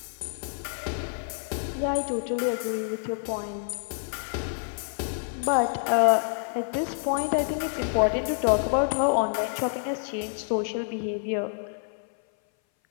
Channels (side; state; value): right; silent; 57 dB below the other